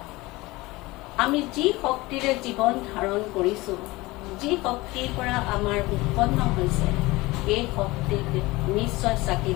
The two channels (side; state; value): right; quieter; 21.2 dB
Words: আমি যি শক্তিৰে জীৱন ধাৰণ কৰিছো, যি শক্তিৰ পৰা আমাৰ উৎপন্ন হৈছে, এই শক্তিক নিশ্চয়